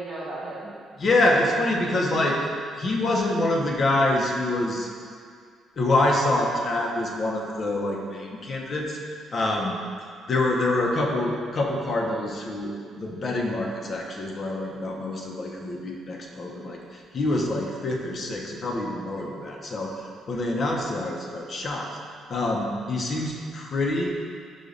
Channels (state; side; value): normal; both; correlation 0.77